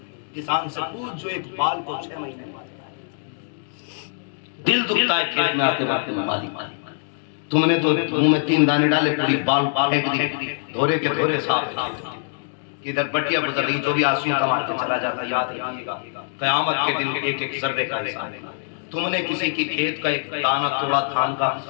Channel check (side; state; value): right; silent; digital silence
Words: किसान से पूछ जो एक बाल को 6 महीने दिल दुखता है खेत में आते बातें में मालिक तुमने तो मुंह में 3 दाने डाले, पूरी बाल फेंक दी, धोरे के धोरे साफ। इधर बटिया गुजर रही, जो भी आंसू कमाते चला जाता, याद रखिएगा कयामत के दिन एक सर्वे का हिसाब है। तुमने किसी की खेत का एक दाना तोड़ा धान का,